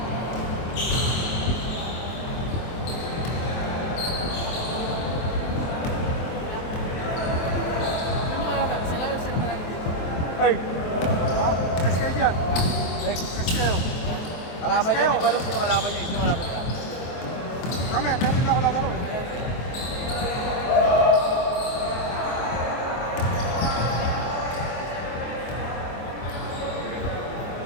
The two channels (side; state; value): right; late; 23 ms